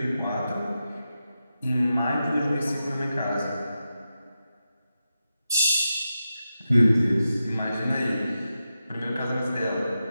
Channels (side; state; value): both; inverted; correlation -0.89